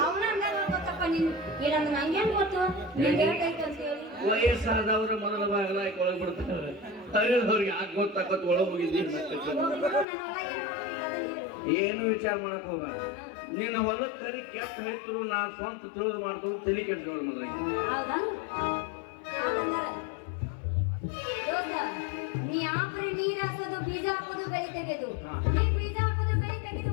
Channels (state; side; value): drops out; right; at 10.1 s